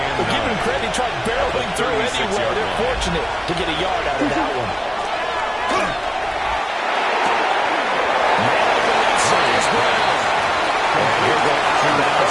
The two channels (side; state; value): both; identical; correlation 1.00